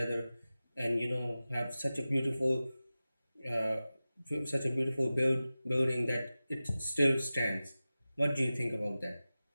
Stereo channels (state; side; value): inverted; both; correlation -0.96